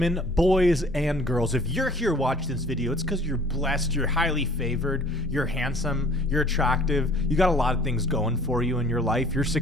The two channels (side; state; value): both; normal; correlation 0.52